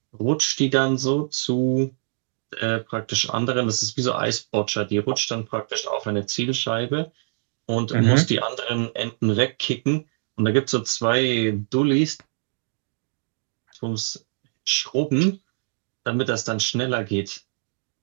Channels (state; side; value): silent; left; digital silence